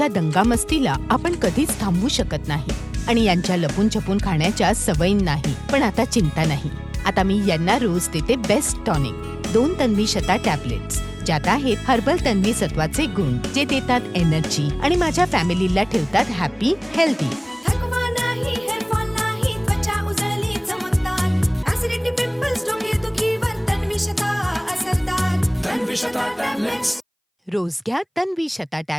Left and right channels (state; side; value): identical; both; correlation 1.00